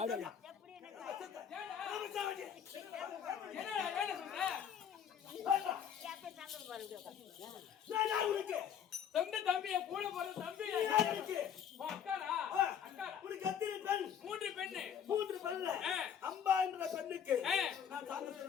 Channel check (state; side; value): quieter; right; 8.5 dB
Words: தம்பிய கூட போற தம்பி அக்காரா அக்கா உனக்கு எத்தனை பெண்? மூன்று பெண்ணு அம்பா என்ற பெண்ணுக்கு நான்